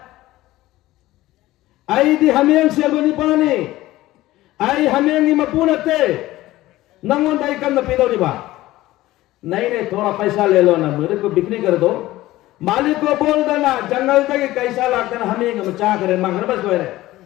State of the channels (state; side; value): quieter; right; 16.7 dB